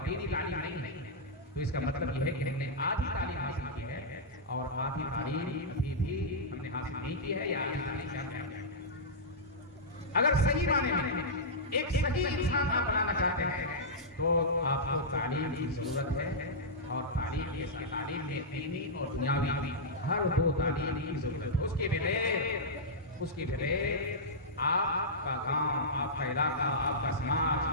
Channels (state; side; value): normal; both; correlation -0.12